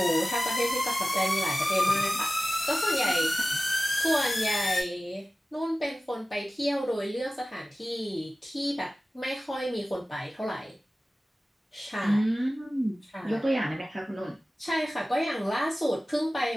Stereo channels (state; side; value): normal; both; correlation 0.96